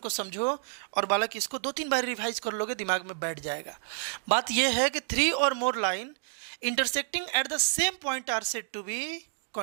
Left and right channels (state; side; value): silent; left; digital silence